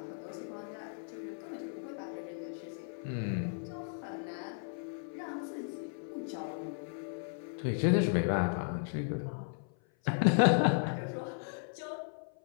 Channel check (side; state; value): right; silent; 54 dB below the other